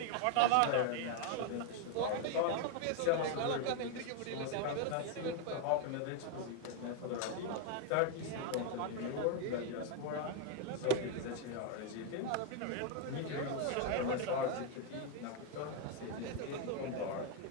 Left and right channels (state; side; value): different; both; correlation 0.01